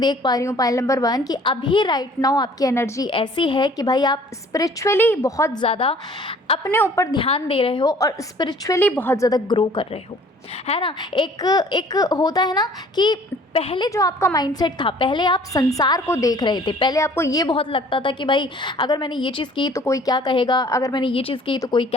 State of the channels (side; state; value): both; normal; correlation 0.53